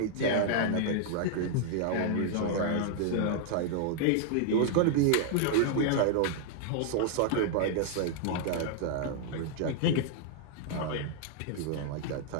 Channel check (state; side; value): different; both; correlation 0.00